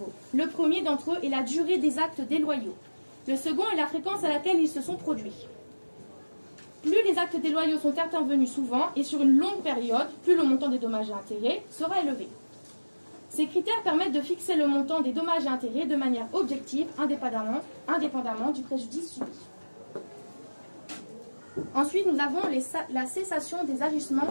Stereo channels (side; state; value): both; inverted; correlation -1.00